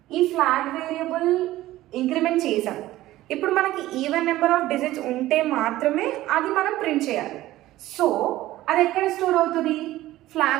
ఈ flag variable increment చేసాం. ఇప్పుడు మనకి even number of digits ఉంటే మాత్రమే అది మనం ప్రింట్ చేయాలి. సో అది ఎక్కడ స్టోర్ అవుతుంది?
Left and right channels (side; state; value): left; quieter; 15.8 dB